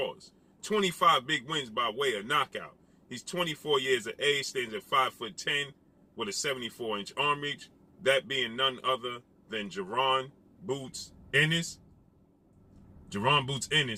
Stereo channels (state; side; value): identical; both; correlation 1.00